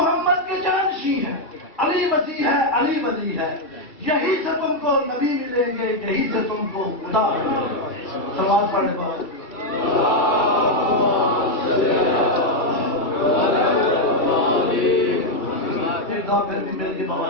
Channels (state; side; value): late; right; 2.3 ms